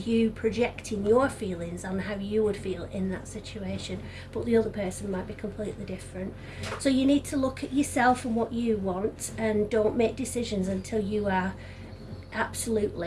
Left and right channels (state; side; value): identical; both; correlation 1.00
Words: you projecting your feelings on how you would feel in that situation, but the other person might be completely different. So you need to look at yourself and what you want, and don't make decisions until you are